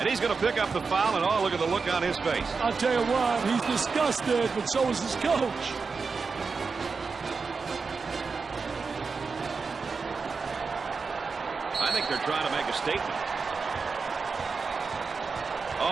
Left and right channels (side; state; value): left; quieter; 4.8 dB